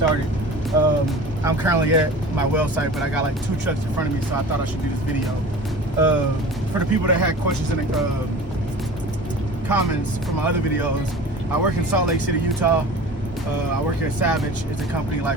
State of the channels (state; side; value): normal; both; correlation 0.39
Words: I'm currently at my well site, but I got like 2 trucks in front of me, so I thought I should do this video. For the people that had questions in the comments from my other videos, I work in Salt Lake City, Utah. I work here at Savage. It's a company like